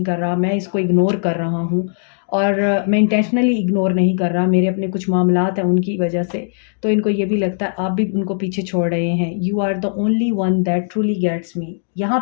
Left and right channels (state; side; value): silent; right; digital silence